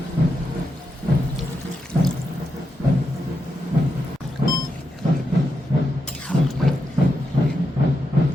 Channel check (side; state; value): both; normal; correlation 0.85